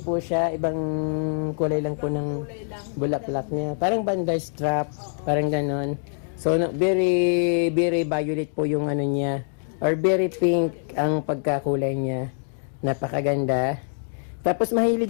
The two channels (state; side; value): silent; right; digital silence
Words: po siya. Ibang kulay lang po ng bulaklak niya. Parang banda strap, parang ganon. So, very, very violet po yung niya. Or very pink ang pagkakulay niya. Napakaganda. Tapos mahilig